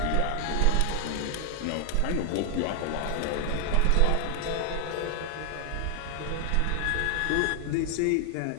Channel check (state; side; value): different; both; correlation 0.00